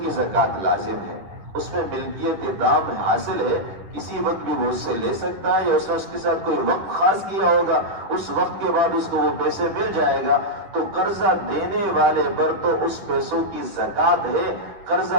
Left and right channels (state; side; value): late; left; 10 ms